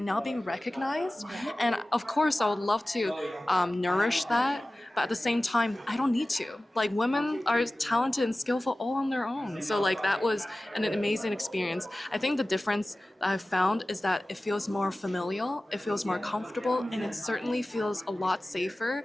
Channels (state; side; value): normal; both; correlation 0.97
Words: now being recognized. And of course, I would love to nourish that. But at the same time, I don't need to. Like, women are talented and skillful all on their own. So like that was an amazing experience. I think the difference that I've found is that it feels more familial, it feels more comfortable, and it certainly feels a lot safer,